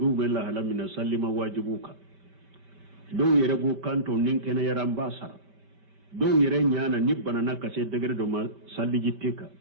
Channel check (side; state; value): left; late; 5.1 ms